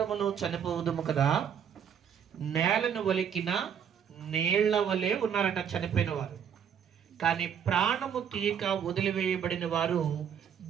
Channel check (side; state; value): left; quieter; 8.1 dB